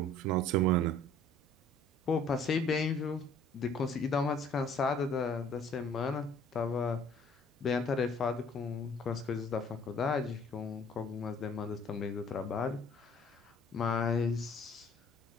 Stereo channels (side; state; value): both; normal; correlation 0.55